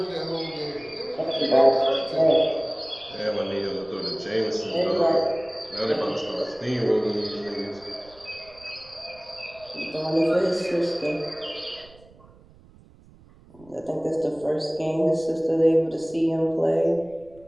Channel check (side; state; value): right; noise; rumble, 25 dB below the sound